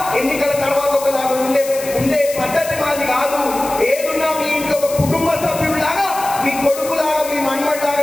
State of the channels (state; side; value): noise; left; hiss, 11 dB below the sound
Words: ఎన్నికల తర్వాత ఒకలాగా ఉండే పద్ధతి మాది కాదు. ఏదున్నా మీ ఇంట్లో ఒక కుటుంబ సభ్యుడిలాగా, మీ కొడుకులాగా, మీ